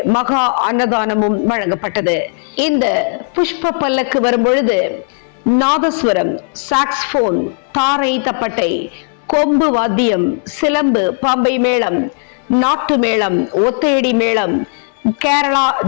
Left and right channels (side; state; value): right; silent; 70 dB below the other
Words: மகா அன்னதானமும் வழங்கப்பட்டது. இந்த புஷ்ப பல்லக்கு வரும்பொழுது நாதஸ்வரம், சாக்ஸ்போன், தாரை தப்பட்டை, கொம்பு வாத்தியம், சிலம்பு, பம்பை மேளம், நாட்டு மேளம், ஒத்தையடி மேளம், கேரளா